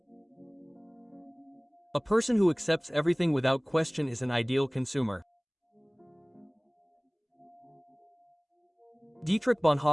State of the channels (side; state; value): both; identical; correlation 1.00